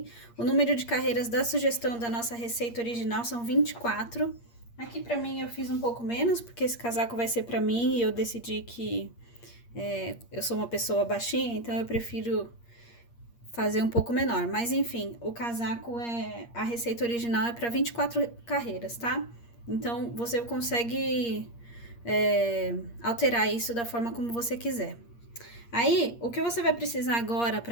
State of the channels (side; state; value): right; late; 8.5 ms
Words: O número de carreiras da sugestão da nossa receita original são 24. Aqui para mim eu fiz um pouco menos, porque esse casaco vai ser para mim e eu decidi que eu sou uma pessoa baixinha, então eu prefiro fazer um pouco menor. Mas enfim, o casaco a receita original é para 24 carreiras, tá? Então você consegue alterar isso da forma como você quiser. Aí, o que você vai precisar agora